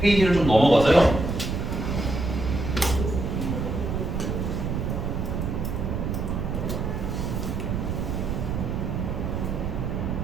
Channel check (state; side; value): noise; right; rumble, 2 dB below the sound